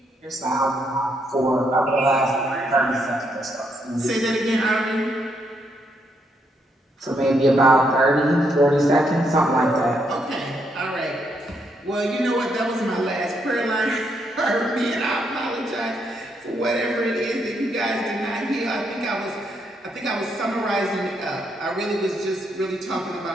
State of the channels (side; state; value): both; normal; correlation 0.76